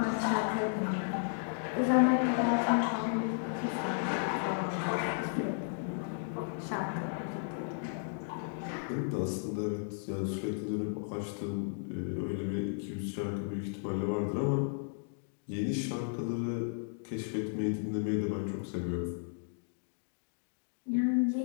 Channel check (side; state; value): right; silent; digital silence